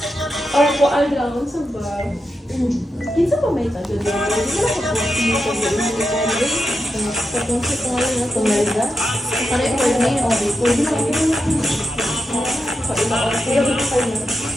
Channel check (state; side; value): normal; both; correlation 0.87